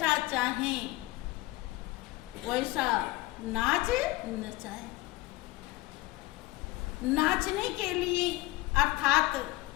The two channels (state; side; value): quieter; right; 19.4 dB